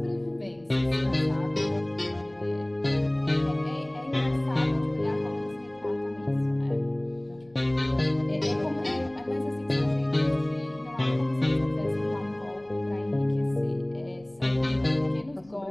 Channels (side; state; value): left; noise; rumble, 29 dB below the sound